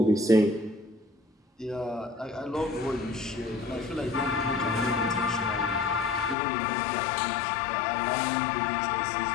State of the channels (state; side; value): drops out; right; at 6.4 s